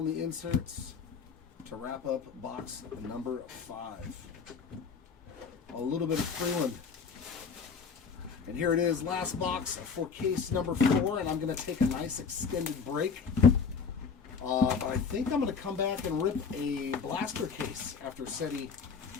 the inserts to wrap up box number 5. A little bit of Freeland. And here it is, last box for case number 4, and I'm going to take a nice extended break. But I think I'm going to come back and rip a blaster case after SETI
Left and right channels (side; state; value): right; quieter; 5.7 dB